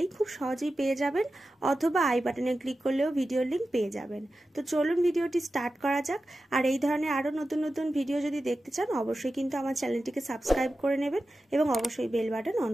খুব সহজেই পেয়ে যাবেন, অথবা আই বাটনে ক্লিক করলেও ভিডিওর লিংক পেয়ে যাবেন। তো চলুন ভিডিওটি স্টার্ট করা যাক। আর এই ধরনের আরও নতুন নতুন ভিডিও যদি দেখতে চান অবশ্যই কিন্তু আমার চ্যানেলটিকে সাবস্ক্রাইব করে নেবেন এবং অবশ্যই বেল বাটন অন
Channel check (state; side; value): normal; both; correlation 0.93